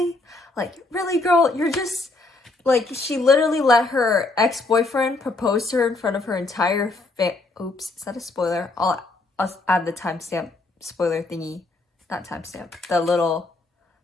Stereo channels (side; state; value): right; quieter; 3.2 dB